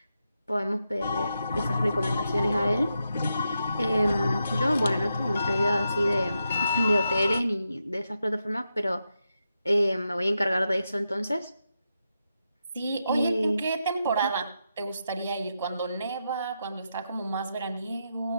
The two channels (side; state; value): both; inverted; correlation -0.86